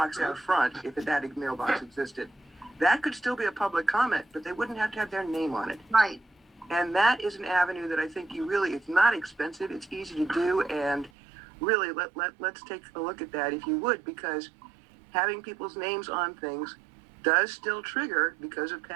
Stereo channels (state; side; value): drops out; left; at 11.1 s